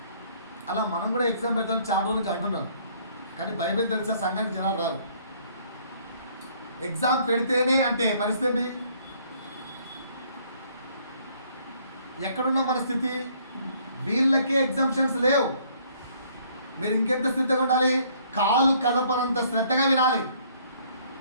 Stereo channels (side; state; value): both; inverted; correlation -0.62